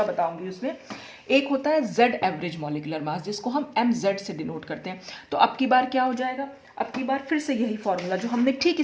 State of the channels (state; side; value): identical; both; correlation 1.00